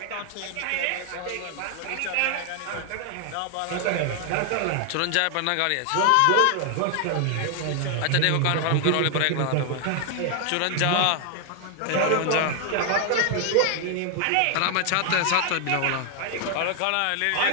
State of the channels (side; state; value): both; different; correlation 0.00